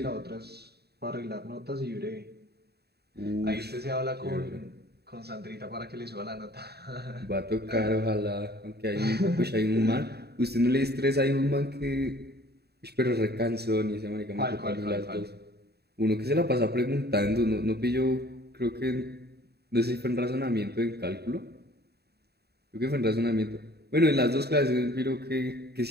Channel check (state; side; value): late; left; 0.47 ms